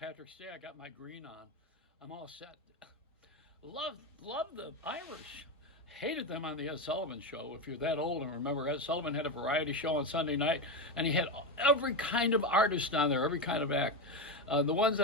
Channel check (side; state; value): both; normal; correlation 0.14